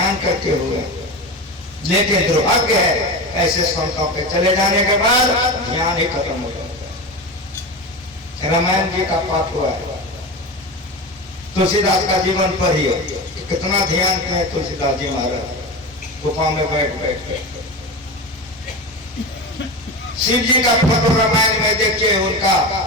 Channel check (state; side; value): normal; both; correlation 0.24